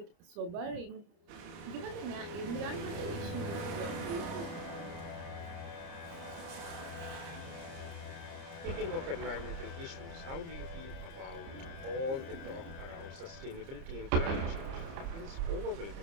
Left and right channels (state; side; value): late; left; 30 ms